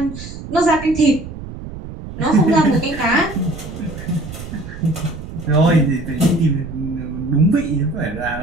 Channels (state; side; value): noise; right; rumble, 11 dB below the sound